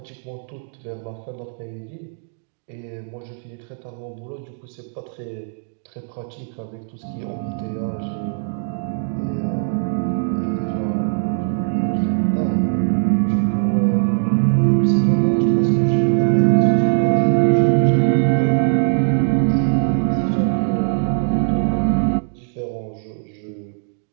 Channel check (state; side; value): silent; left; 65 dB below the other